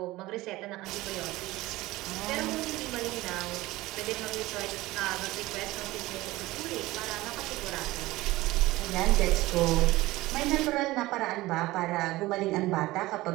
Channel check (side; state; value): left; quieter; 18.6 dB